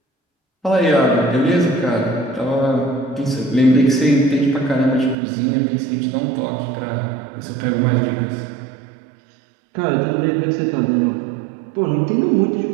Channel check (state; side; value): drops out; left; at 5.2 s